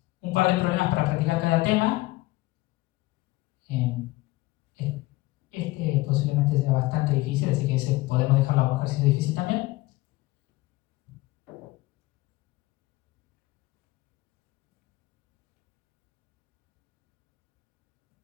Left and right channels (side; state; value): right; quieter; 19.8 dB